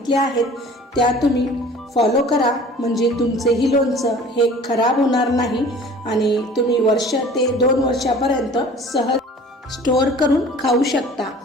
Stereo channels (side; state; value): both; normal; correlation 0.46